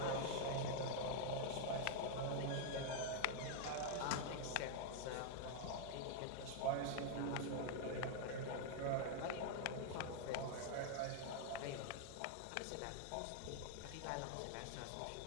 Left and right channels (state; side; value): different; both; correlation -0.01